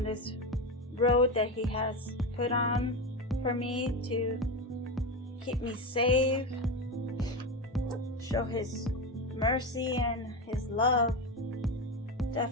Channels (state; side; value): normal; both; correlation 0.17